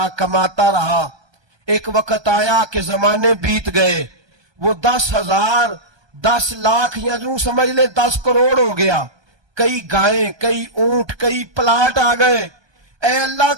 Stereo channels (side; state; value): left; late; 1.2 ms